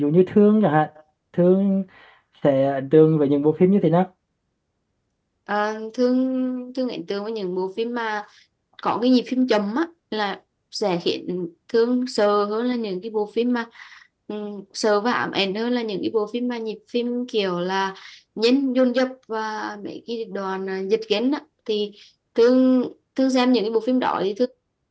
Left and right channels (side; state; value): both; identical; correlation 1.00